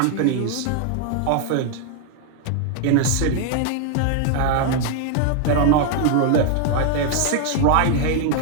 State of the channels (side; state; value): both; different; correlation 0.00